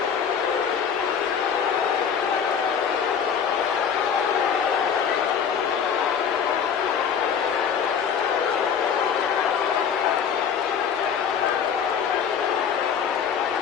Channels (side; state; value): right; quieter; 7.3 dB